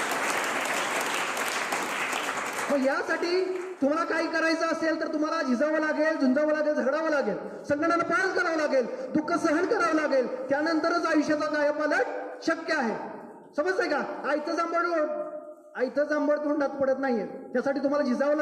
मग यासाठी तुम्हाला काही करायचं असेल तर तुम्हाला झिजावं लागेल, झुंजावं लागेल, झगडावं लागेल, संकटाला पार करावं लागेल, दुःख सहन करावं लागेल. त्यानंतरच आयुष्याचा कायापालट शक्य आहे. समजतंय का? आयतं जांभळ तोंडात पडत नाहीये. त्यासाठी तुम्हाला झिजावं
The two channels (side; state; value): both; identical; correlation 1.00